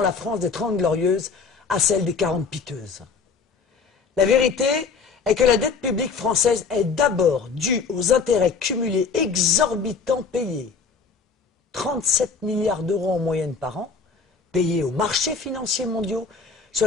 France des 30 glorieuses à celle des 40 piteuses. La vérité est que la dette publique française est d'abord due aux intérêts cumulés exorbitants payés. 37 milliards d'euros en moyenne par an, payés aux marchés financiers mondiaux sur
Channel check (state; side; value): quieter; right; 5.0 dB